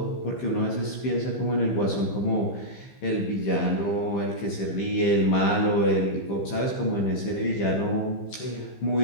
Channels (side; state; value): right; late; 15 ms